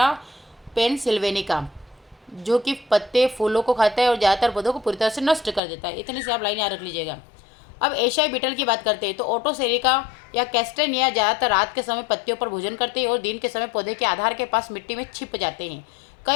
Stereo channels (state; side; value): drops out; right; at 5.6 s